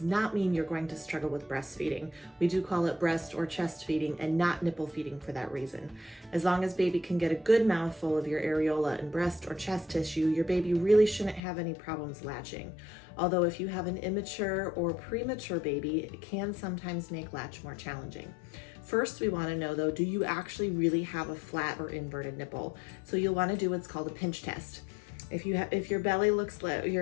not mean you're going to struggle with breastfeeding. We do call it breast or chest feeding and not nipple feeding for that reason. As long as baby can get a good mouthful of your areola and breast or chest tissue, your baby really shouldn't have any problems latching. Although if you have an immature or premature baby, it can sometimes make latch more challenging. First, we want to know though, do you actually really have a flat or inverted nipple? So you'll want to do what's called a pinch test. If your belly looks like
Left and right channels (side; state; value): right; drops out; at 11.4 s